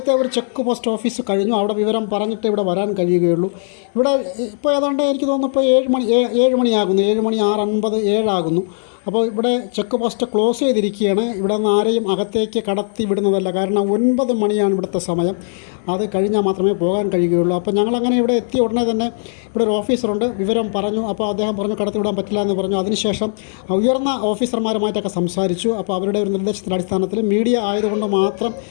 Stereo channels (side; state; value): right; silent; digital silence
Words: ഒരു ചെക്ക് പോസ്റ്റ് ഓഫീസ് കഴിഞ്ഞു. അവിടെ വിവരം പറഞ്ഞിട്ട് ഇവിടെ വരാൻ കഴിയുകയുള്ളൂ. ഇവിടെ ഇപ്പോൾ ഏതാണ്ട് എനിക്ക് തോന്നുന്നു ഇപ്പോൾ 7 മണിയാകുന്നു. 7 മണി 6:50 7 അപ്പോൾ ഇവിടെ ചെക്ക് പോസ്റ്റ് ക്ലോസ് ചെയ്തിരിക്കുകയാണ്. ഇവിടെ നിന്ന് ആരെയും അകത്തേക്ക് കടത്തി വിടുന്നതല്ല. കാരണം 9 മണിയാണ് ഇവിടുത്തെ സമയം. അത് കഴിഞ്ഞാൽ മാത്രമേ പോകാൻ കഴിയുകയുള്ളൂ. അപ്പോൾ ഞങ്ങളങ്ങനെ ഇവിടെ എത്തിയ ഉടനെ തന്നെ ഇവിടെ ഒരു ഓഫീസറുണ്ട്. വിവരം പറഞ്ഞു. അപ്പോൾ അദ്ദേഹം പറഞ്ഞു കടത്തി വിടാൻ പറ്റില്ല എന്ന് പറഞ്ഞു. അതിനുശേഷം ഉയർന്ന ഓഫീസർമാരുമായിട്ടൊക്കെ സംസാരിച്ചു. അപ്പോൾ അവരുടെ ഒരു നിർദ്ദേശത്തിൻ്റെ അടിസ്ഥാനത്തിൽ മീഡിയ ആയതുകൊണ്ട് മാത്രം